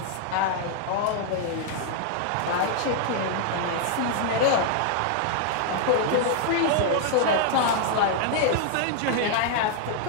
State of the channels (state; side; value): different; both; correlation -0.01